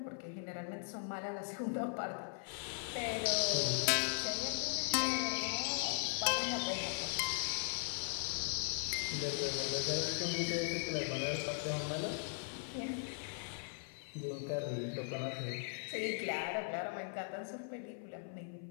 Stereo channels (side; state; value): right; silent; 52 dB below the other